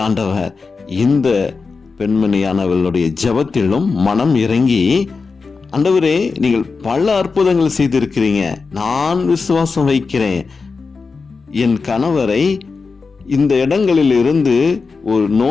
ஆண்டவர் இந்த பெண்மணியானவளுடைய ஜெபத்திலும் மனம் இறங்கி, ஆண்டவரே நீங்கள் பல அற்புதங்கள் செய்திருக்கிறீங்க, நான் விசுவாசம் வைக்கிறேன், என் கணவரை இந்த இடங்களில் இருந்து ஒரு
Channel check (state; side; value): quieter; right; 4.6 dB